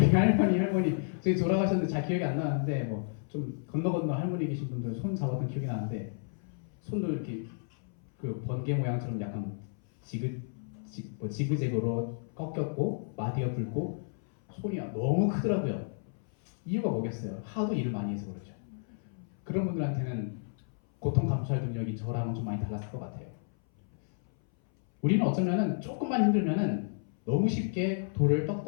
할머니 저희 돌아가셨는데 잘 기억이 안 나는데 뭐 좀 건너 할머니 계신 분들 손 잡았던 기억이 나는데 손도 이렇게 그 번개 모양처럼 약간 지그재그로 꺾였고 마디가 붉고 손이 너무 크더라고요. 이유가 뭐겠어요? 하도 일을 많이 해서 그렇죠. 그런 분들한테는 고통 감수할 능력이 저랑은 좀 많이 달랐을 것 같아요. 우리는 어쩌면은 조금만 힘들면은 너무 쉽게 돌을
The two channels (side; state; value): right; silent; 57 dB below the other